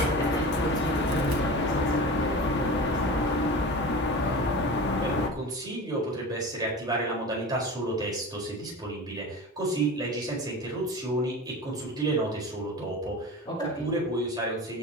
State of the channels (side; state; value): both; normal; correlation 0.32